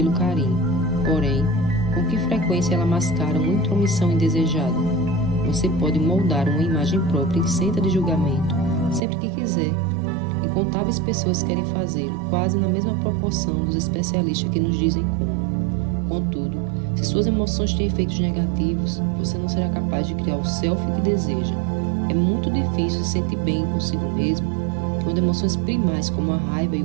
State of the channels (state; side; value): drops out; left; at 9.0 s